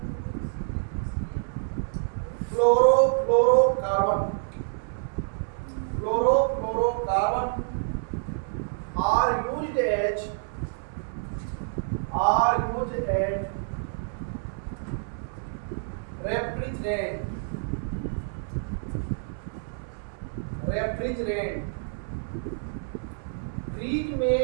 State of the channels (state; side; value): silent; left; 60 dB below the other